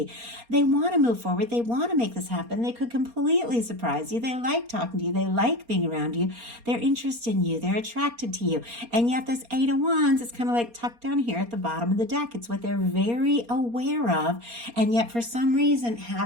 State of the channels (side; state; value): left; late; 4.3 ms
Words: They want to move forward. They want to make this happen. They could completely surprise you. They like talking to you. They like being around you. They're interested in you. They're attracted to you. And yet this Eight of Wands is kind of like tucked down here at the bottom of the deck. It's what they're very aware of, and yet for some reason